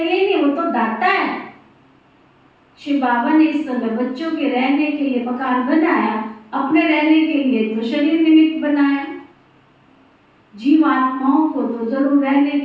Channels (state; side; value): identical; both; correlation 1.00